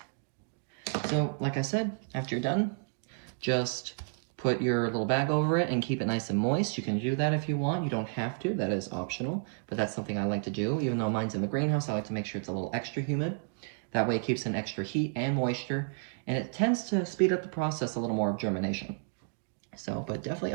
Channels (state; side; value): silent; left; digital silence